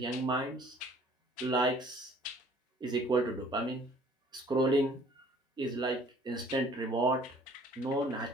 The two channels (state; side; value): normal; both; correlation 0.55